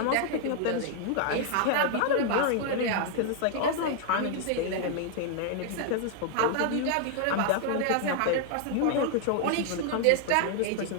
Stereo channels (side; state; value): both; different; correlation 0.00